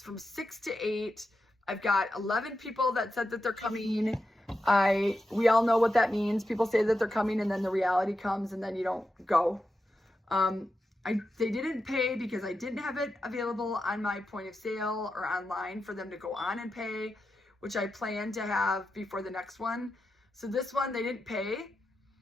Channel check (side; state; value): both; normal; correlation 0.89